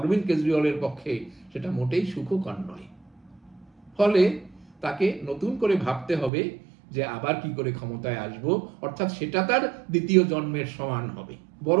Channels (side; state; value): left; drops out; at 6.3 s